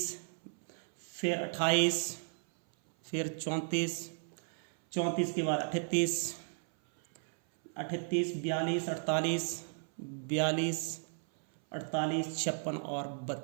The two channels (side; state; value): left; silent; 55 dB below the other